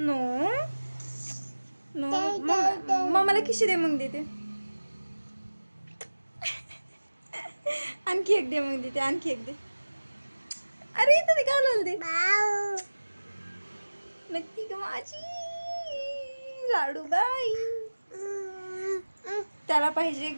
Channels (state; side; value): inverted; both; correlation -1.00